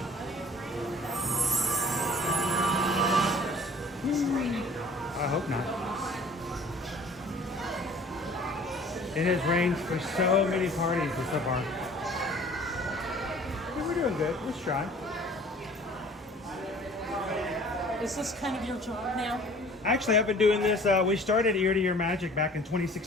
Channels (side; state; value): both; normal; correlation 0.50